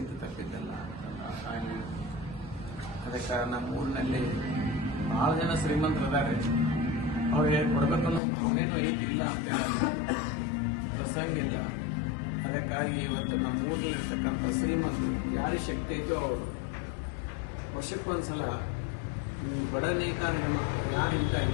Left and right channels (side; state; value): right; drops out; at 8.2 s